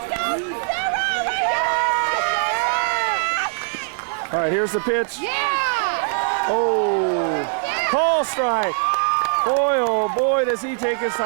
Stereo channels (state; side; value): silent; left; 65 dB below the other